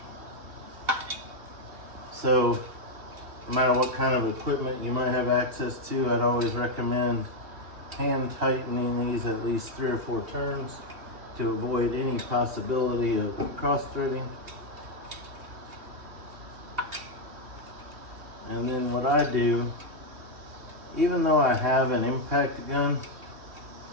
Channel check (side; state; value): left; late; 2.7 ms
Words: So no matter what kind of equipment you might have access to, I'd always recommend hand tightening these at least 3 or 4 turns to avoid any possibility of cross threading. And then what I do, even though I have an impact gun,